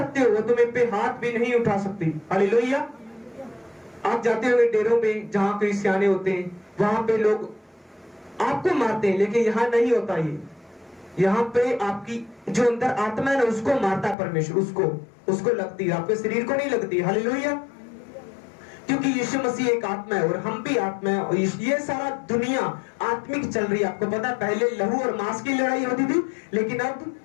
हो, वो तुम्हें पे हाथ भी नहीं उठा सकती। हालेलुया। आप जाते हुए डेरों में जहां क्रिश्चियाने होते हैं, वहां पे लोग आपको मारते हैं, लेकिन यहाँ नहीं होता ये। यहाँ पे आपकी जो अंदर आत्मा है ना, उसको मारता है परमेश्वर, उसको लगती है, आपके शरीर को नहीं लगती। हालेलुया। क्योंकि यीशु मसीह एक आत्मा है और हम भी आत्मा है, और ये सारा दुनिया आत्मिक चल रही है। आपको पता है पहले लहू और मांस की लड़ाई होती थी, लेकिन अब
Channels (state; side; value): drops out; right; at 14.2 s